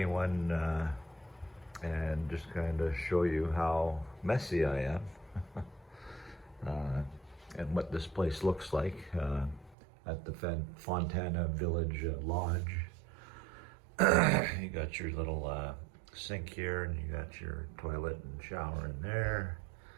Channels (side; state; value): left; drops out; at 9.8 s